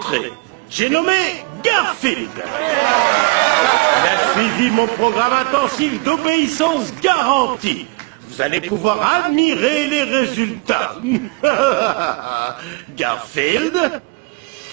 J'ai nommé Garfield. Il a suivi mon programme intensif d'obéissance garantie. Vous allez pouvoir admirer les résultats. Garfield?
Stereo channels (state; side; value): quieter; left; 28.2 dB